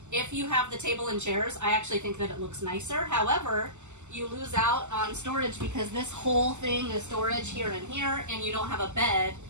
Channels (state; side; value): late; left; 0.84 ms